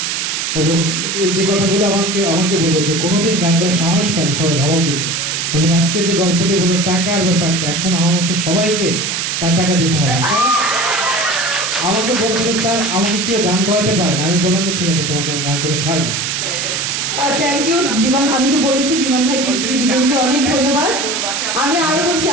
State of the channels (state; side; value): noise; right; hiss, 1 dB below the sound